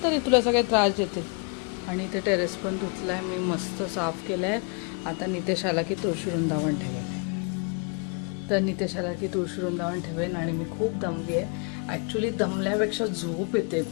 तुला सगळे त्रास देते. आणि इथे टेरेस पण धुतला आहे मी, मस्त साफ केलं आहे. आता नितेश आला की तुळशी वृंदावन ठेवेल. तर नितेश आला की तुळशी वृंदावन ठेवेन. आणि मी खूप दमली आहे ॲक्च्युली, दमल्यापेक्षा झोप येते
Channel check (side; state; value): right; quieter; 36.1 dB